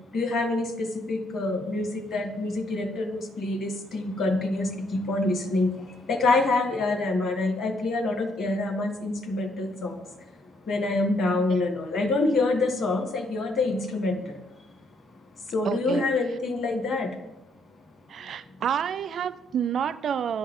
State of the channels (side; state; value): both; normal; correlation 0.71